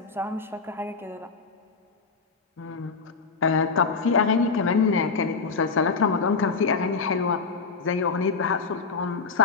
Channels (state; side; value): quieter; right; 4.9 dB